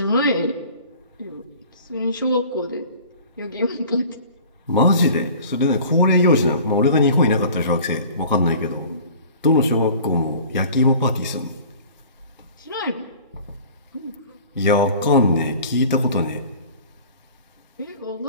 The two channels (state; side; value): inverted; both; correlation -0.45